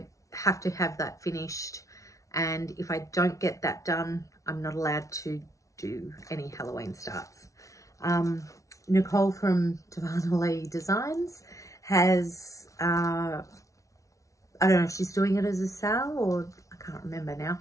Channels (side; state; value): right; late; 0.16 ms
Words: have to have that finished, and if I don't get that done, I'm not allowed to do any Halloween starts. Nicole from Darvanalee Designs has, I don't know if she's doing it as a sale, or I can't remember now,